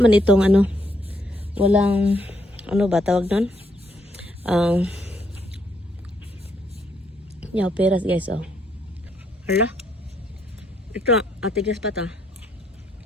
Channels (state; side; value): normal; both; correlation 0.73